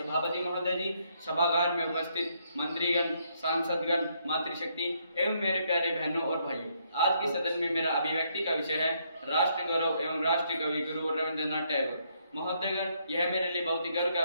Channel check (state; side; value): inverted; both; correlation -0.73